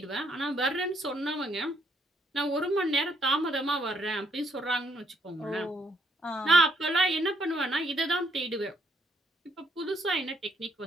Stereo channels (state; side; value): normal; both; correlation 0.71